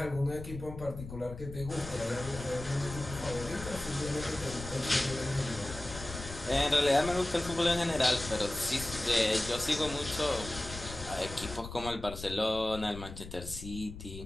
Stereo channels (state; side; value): noise; left; rumble, 11 dB below the sound